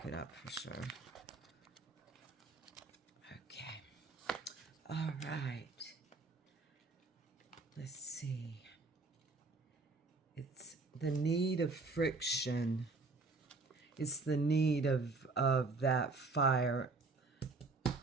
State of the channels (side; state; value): left; quieter; 3.7 dB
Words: it up for sure. Okay. All right. Let's see. It's the need of friction. It's the need of that fire